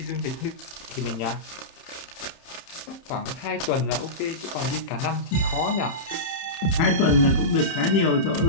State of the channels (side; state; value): right; late; 30 ms